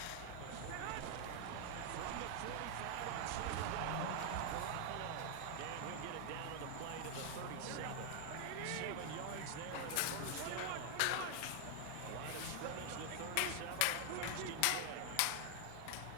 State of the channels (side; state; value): both; different; correlation 0.00